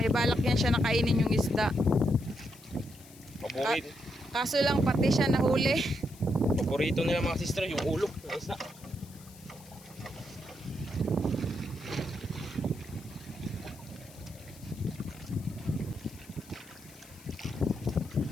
may balak yan siya nakainin yung isda. Paborito. Kaso lang pati siya nahuli. Paborito nila mga sister yung ulo ng isda.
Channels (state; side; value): noise; left; hiss, 21 dB below the sound